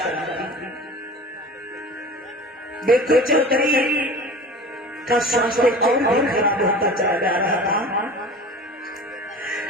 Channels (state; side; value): normal; both; correlation 0.38